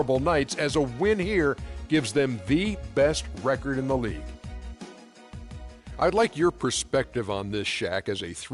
nights, as a win here gives them the best record in the league. I'd like your perspective on this, Shaq, as a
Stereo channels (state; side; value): identical; both; correlation 1.00